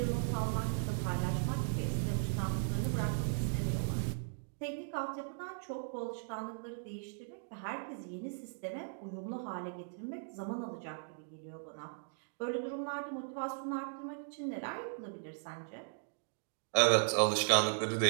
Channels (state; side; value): silent; left; digital silence